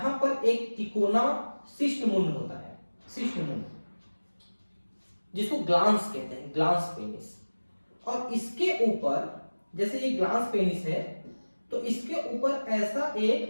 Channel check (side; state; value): both; inverted; correlation -1.00